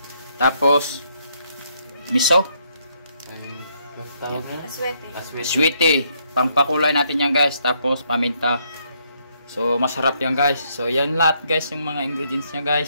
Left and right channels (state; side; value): inverted; both; correlation -0.73